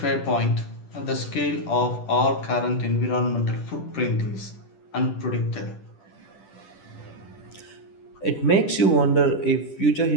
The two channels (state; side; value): late; right; 10 ms